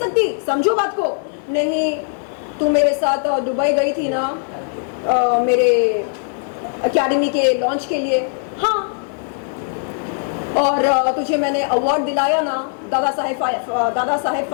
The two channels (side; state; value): right; silent; 66 dB below the other